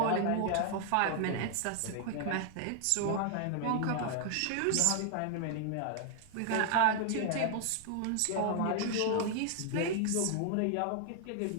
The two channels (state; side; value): different; both; correlation 0.00